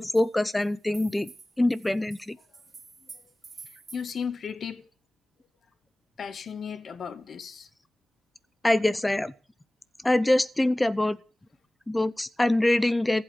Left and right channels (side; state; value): both; normal; correlation 0.98